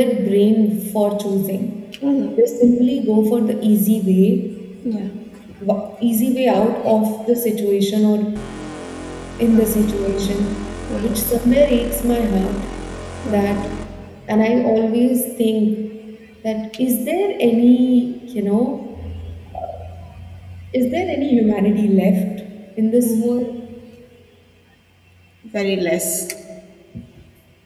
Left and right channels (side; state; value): both; identical; correlation 1.00